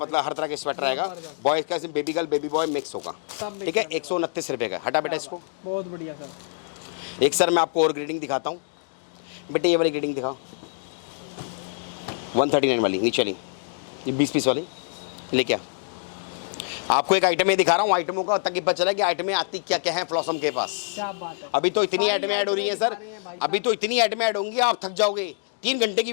हर तरह के स्वेटर रहेगा, बॉयज का, baby girl baby boy mix होगा, ठीक है। 129 रुपए का, हटा बेटा इसको, बहुत बढ़िया सर। एक सर मैं आपको और ग्रेडिंग दिखाता हूँ बेटे, ये वाली ग्रेडिंग दिखाओ, 139 वाली नीचे वाली, ये 20 पीस वाली लेके आ। आपको एक आइटम ये दिखा रहा हूँ, आइटमों का, ताकि पता चला कि आइटमें आती क्या क्या है फ्लॉसम के पास। क्या बात है, अभी तो इतनी आइटमें ऐड हो रही है सर, अभी तो इतनी आइटमें ऐड होंगी आप थक जाओगे, 3 घंटे की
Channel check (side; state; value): right; silent; digital silence